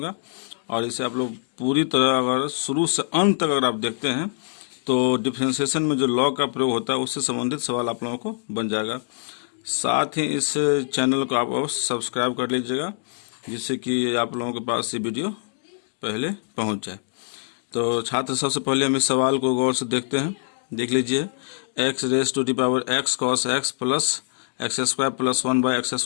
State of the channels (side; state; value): right; silent; digital silence